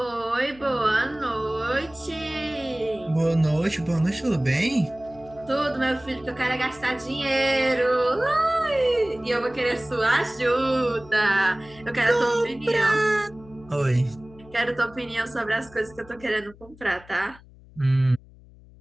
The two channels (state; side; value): noise; left; hum, 23 dB below the sound